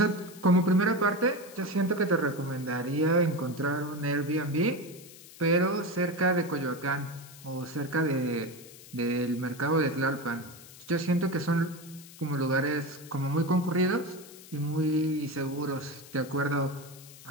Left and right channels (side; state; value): left; noise; hiss, 19 dB below the sound